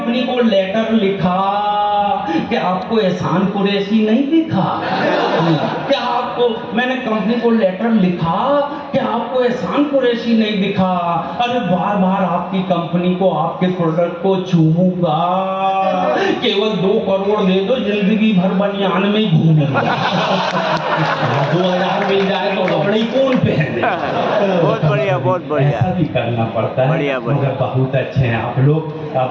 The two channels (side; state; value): both; identical; correlation 1.00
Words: को लेटर लिखा कि आपको एहसान कुरैशी नहीं दिखा, क्या आपको आपको मैंने कंपनी को लेटर लिखा कि आपको एहसान कुरैशी नहीं दिखा। अरे बार बार आपकी कंपनी को, आपके प्रोडक्ट को चूमूंगा, केवल 2 करोड़ दे दो, जिंदगी भर बनियान में ही घूमूंगा। 2000 मिल जाए तो कपड़े कौन पहने। बहुत बढ़िया, बहुत बढ़िया। ऐसा भी करना पड़ता है। बढ़िया, बढ़िया। मगर बहुत अच्छे हैं आप लोग।